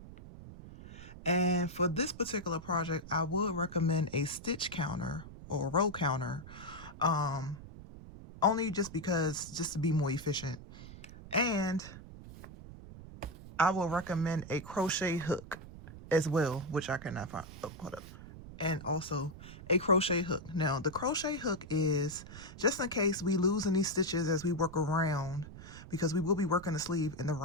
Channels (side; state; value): right; noise; rumble, 15 dB below the sound